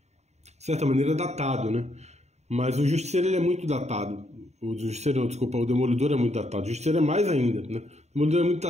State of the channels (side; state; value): left; late; 0.32 ms